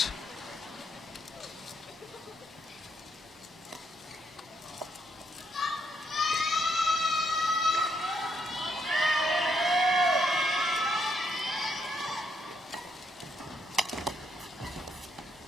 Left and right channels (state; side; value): normal; both; correlation 0.75